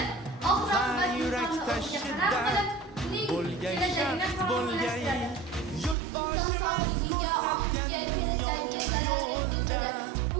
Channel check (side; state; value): left; drops out; at 6.0 s